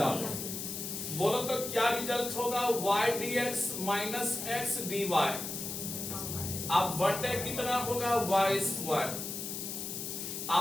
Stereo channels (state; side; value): noise; left; hiss, 5 dB below the sound